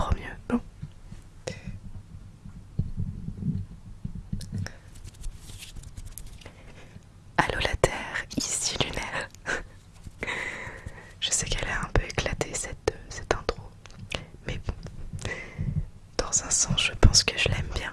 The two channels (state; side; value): identical; both; correlation 1.00